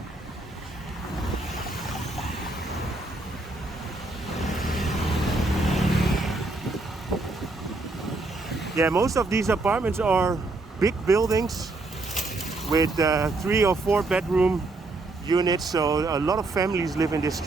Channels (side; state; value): left; quieter; 3.2 dB